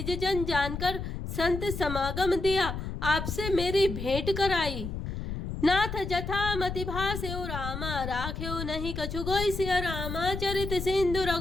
जन जानकर संत समागम दिया, आपसे मेरी भेंट कराई। नाथ जथा मति भास्यो रामा राख्यो नहीं कछु गोई सिया रामा चरित सिंधु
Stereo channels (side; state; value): left; noise; rumble, 5 dB below the sound